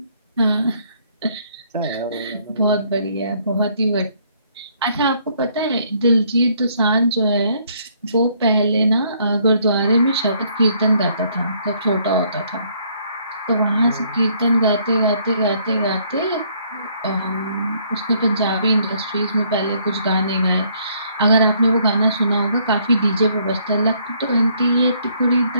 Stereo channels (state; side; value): inverted; both; correlation -0.66